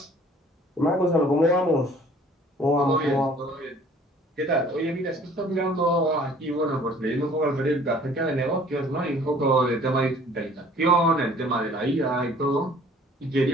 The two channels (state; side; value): normal; both; correlation 0.53